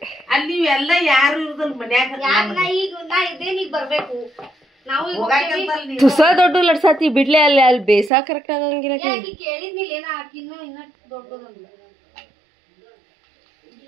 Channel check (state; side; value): drops out; left; at 8.1 s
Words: ಅಲ್ಲಿ ಎಲ್ಲ ಯಾರು ಇರುದಲ್ ಮನ್ಯಾಗ ಬರ್ಬೇಕು ತುಸ ದೊಡ್ಡ ಲಡ್ಸಾತಿ ಬಿಡ್ಲೆ ಅಲ್ಲಿ ಬೇಸಾ ಕರೆಕ್ಟ್ ಆಗಂಗಿಲ್ಲ